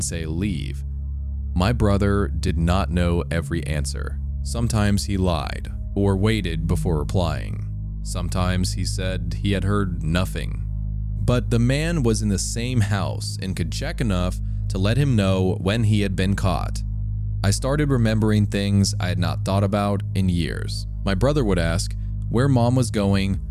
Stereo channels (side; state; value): both; identical; correlation 1.00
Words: leave. My brother did not know every answer. Sometimes he lied or waited before replying. Sometimes he said he had heard nothing. But the man was in the same house and could check enough to let him know when he had been caught. I started remembering things I had not thought about in years. My brother would ask where mom was going